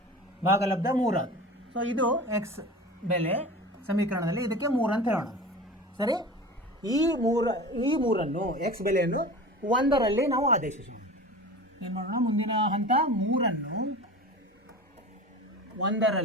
ಭಾಗಲಬ್ಧ 3 ಆಗುತ್ತೆ. ಸೊ ಇದು x ಬೆಲೆ ಸಮೀಕರಣದಲ್ಲಿ ಇದಕ್ಕೆ 3 ಅಂತ ಹೇಳೋಣ. ಸರಿ. ಈ ಮೂರನ್ನು x ಬೆಲೆಯನ್ನು 1ರಲ್ಲಿ ನಾವು ಆದೇಶಿಸೋಣ. ಏನು ಮಾಡೋಣ? ಮುಂದಿನ ಹಂತ 3ಅನ್ನು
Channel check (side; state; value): both; normal; correlation 0.34